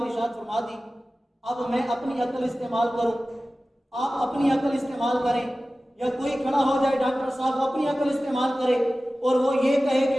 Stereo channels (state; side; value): normal; both; correlation 0.96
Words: ارشاد فرما دی، اب میں اپنی عقل استعمال کروں، آپ اپنی عقل استعمال کریں، یا کوئی کھڑا ہو جائے ڈاکٹر صاحب وہ اپنی عقل استعمال کرے اور وہ یہ کہے